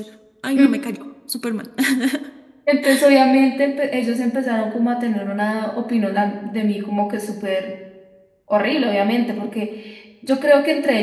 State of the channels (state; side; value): identical; both; correlation 1.00